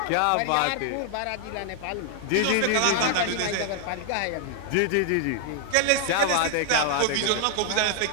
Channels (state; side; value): different; both; correlation 0.00